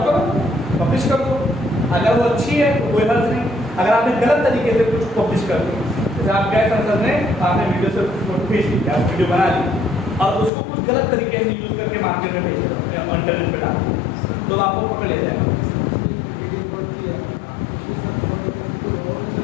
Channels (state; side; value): drops out; right; at 10.5 s